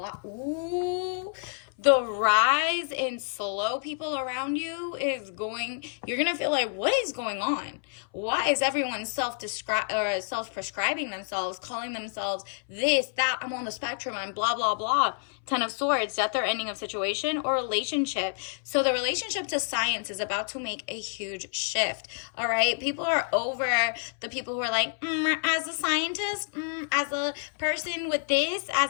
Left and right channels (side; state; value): right; silent; 59 dB below the other